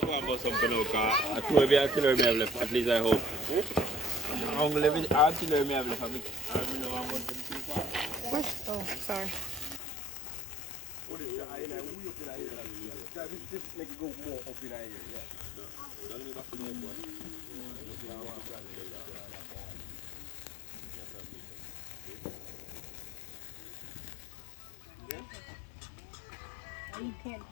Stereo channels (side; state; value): right; drops out; at 9.8 s